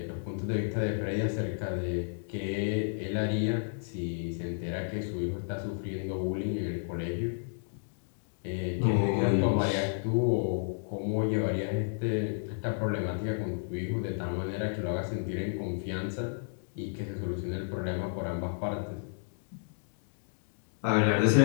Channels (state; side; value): silent; right; digital silence